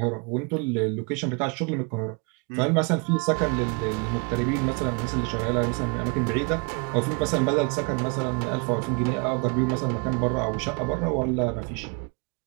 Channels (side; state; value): left; quieter; 33.6 dB